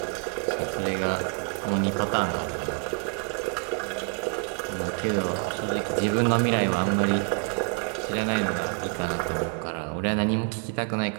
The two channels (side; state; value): left; quieter; 35.9 dB